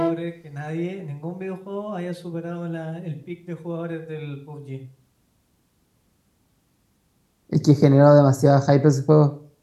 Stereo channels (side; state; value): both; identical; correlation 1.00